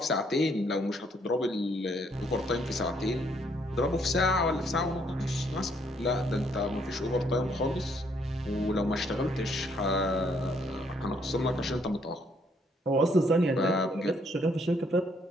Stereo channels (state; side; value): normal; both; correlation 0.69